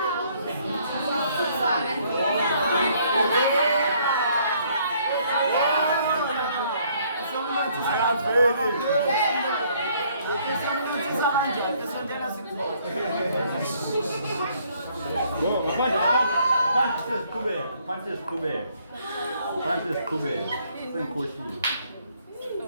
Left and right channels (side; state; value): both; inverted; correlation -0.65